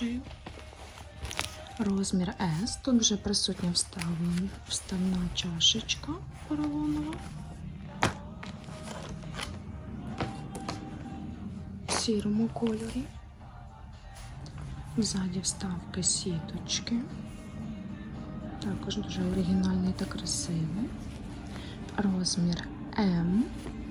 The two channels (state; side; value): identical; both; correlation 1.00